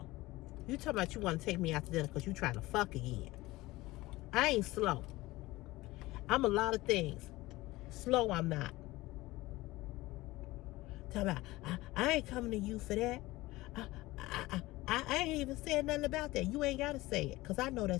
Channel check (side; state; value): right; quieter; 19.2 dB